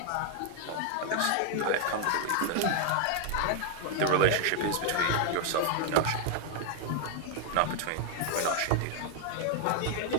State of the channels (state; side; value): different; both; correlation 0.00